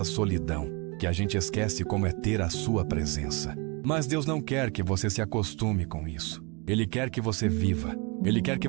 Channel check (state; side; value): quieter; left; 29.6 dB